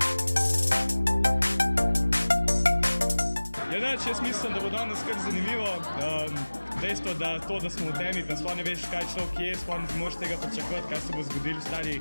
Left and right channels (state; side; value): inverted; both; correlation -1.00